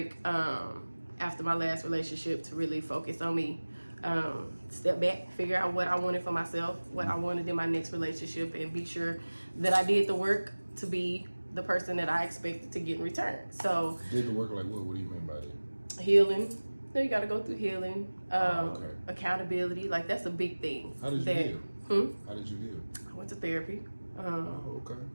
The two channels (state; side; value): inverted; both; correlation -1.00